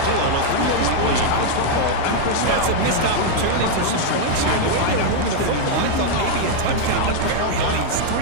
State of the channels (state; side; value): different; both; correlation 0.00